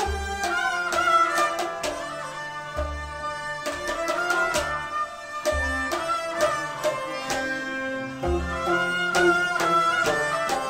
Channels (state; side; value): identical; both; correlation 1.00